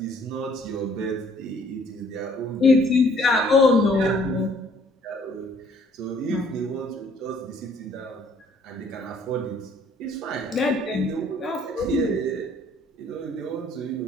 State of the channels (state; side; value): normal; both; correlation 0.60